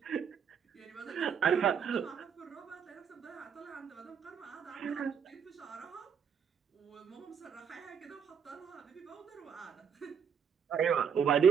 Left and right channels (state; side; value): quieter; left; 7.2 dB